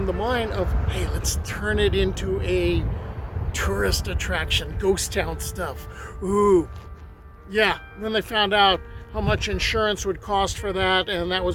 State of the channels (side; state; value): both; identical; correlation 1.00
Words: the mine of, hey, let's turn it into a tourist attraction, ghost town stuff. Ooh, yeah. Then they found out how much insurance would cost for that, and that